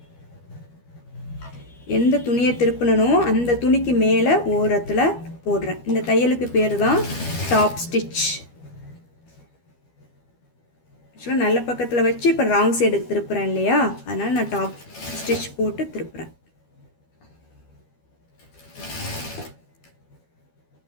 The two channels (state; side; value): late; right; 12 ms